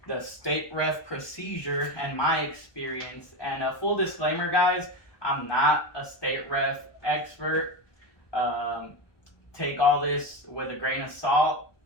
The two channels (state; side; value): late; right; 1.2 ms